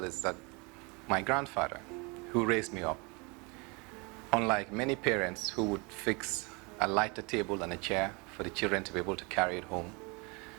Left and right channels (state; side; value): quieter; left; 29.3 dB